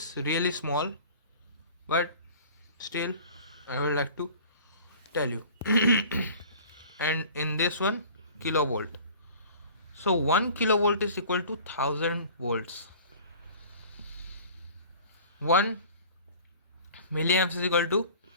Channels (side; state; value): both; inverted; correlation -0.44